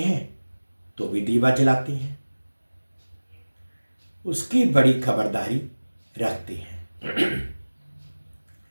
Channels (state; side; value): inverted; both; correlation -1.00